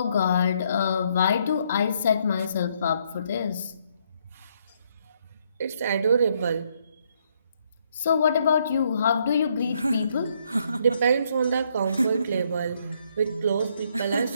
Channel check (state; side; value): inverted; both; correlation -0.71